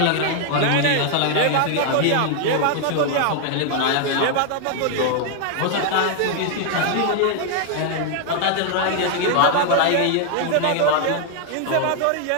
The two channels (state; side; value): different; both; correlation 0.00